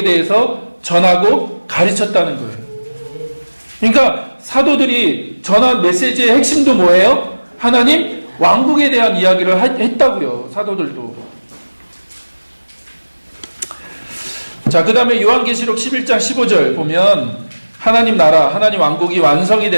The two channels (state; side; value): inverted; both; correlation -1.00